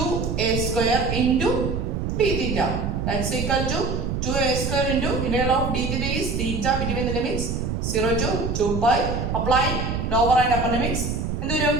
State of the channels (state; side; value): noise; right; rumble, 2 dB below the sound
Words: square into d theta. That's equal to 2a square into integral of d theta is theta between the limits 0 to 2 pi. Apply lower and upper limits. എന്ത് വരും?